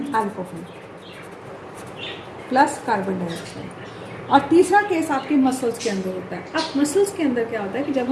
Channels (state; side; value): identical; both; correlation 1.00